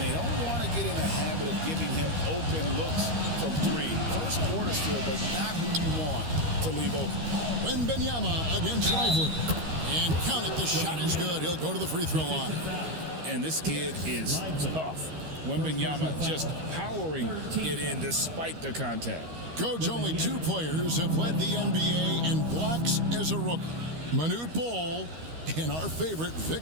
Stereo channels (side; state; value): left; late; 13 ms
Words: they don't want to get in a habit of giving him open looks from 3. First quarter still, but not who you want to leave open. Wembanyama against Lively. And count it, the shot is good. He'll go to the free throw line. And this kid is tough. Wembanyama just powering it in despite the contact. Coach, only 2 players have led the NBA in blocks as a rookie. Manute Bol and our favorite,